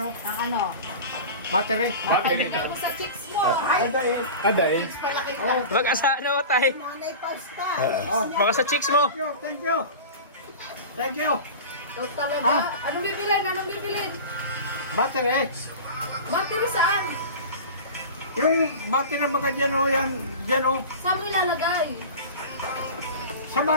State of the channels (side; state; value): both; inverted; correlation -0.32